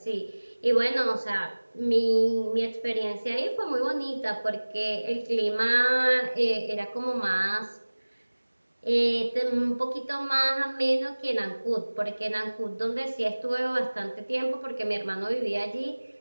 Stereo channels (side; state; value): both; inverted; correlation -1.00